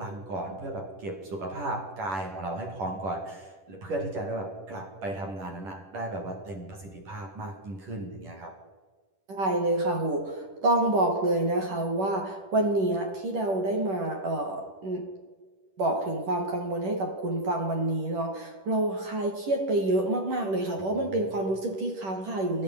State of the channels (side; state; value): left; late; 10 ms